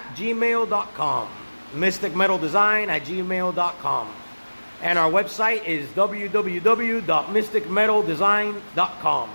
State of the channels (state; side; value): inverted; both; correlation -1.00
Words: mysticmetaldesign@gmail.com. And our website is www.mysticmetaldesign.com.